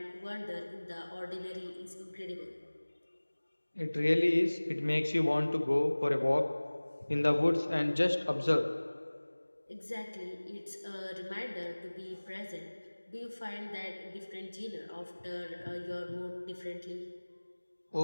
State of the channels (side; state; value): both; inverted; correlation -1.00